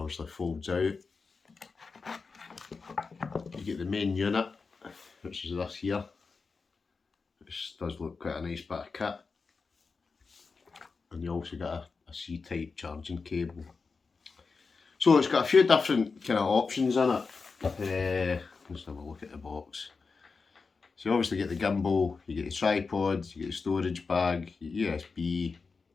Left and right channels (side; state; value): right; quieter; 4.6 dB